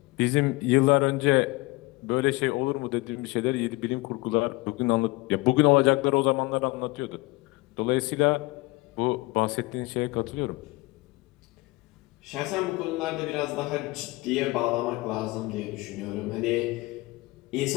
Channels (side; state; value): right; quieter; 22.7 dB